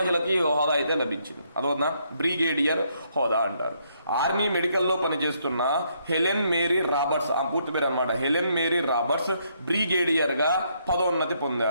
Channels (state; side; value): inverted; both; correlation -0.72